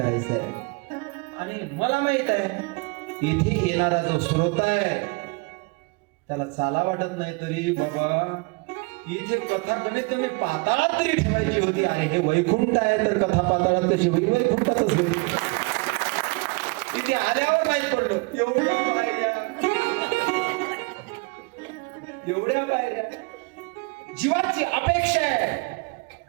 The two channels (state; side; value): quieter; left; 29.2 dB